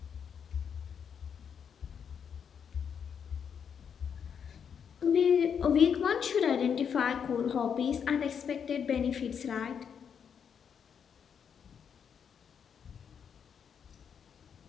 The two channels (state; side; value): quieter; right; 7.4 dB